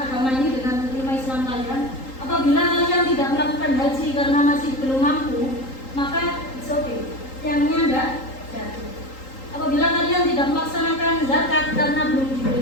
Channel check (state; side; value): late; right; 3.8 ms